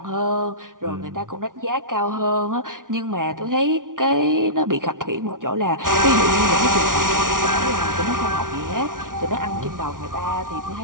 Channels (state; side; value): late; left; 0.89 ms